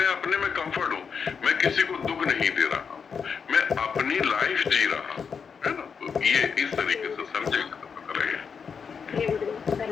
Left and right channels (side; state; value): right; quieter; 6.2 dB